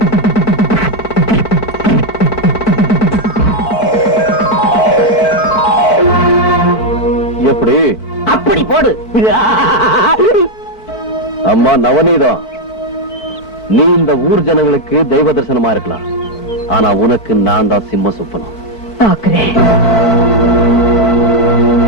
எப்படி? அப்படி போடு. அம்மா நவநீதம், நீ இந்த ஊர் ஜனங்களுக்கு தெய்வ தரிசனமா இருக்கலாம், ஆனா உனக்கு நான் தான் சிம்ம சுப்பனம்.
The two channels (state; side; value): late; right; 1.7 ms